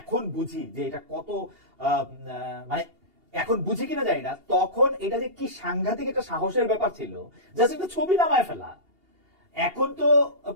বুঝি যে এটা কত মানে এখন বুঝি কিনা জানি না, তখন এটা যে কি সাংঘাতিক একটা সাহসের ব্যাপার ছিল, জাস্ট একটা ছবি নামায় ফেলা। এখন তো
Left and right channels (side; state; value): left; late; 2.8 ms